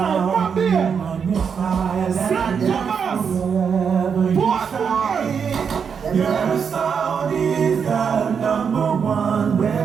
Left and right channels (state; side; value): quieter; left; 6.6 dB